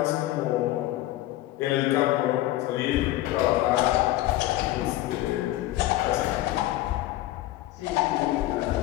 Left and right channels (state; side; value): quieter; right; 15.8 dB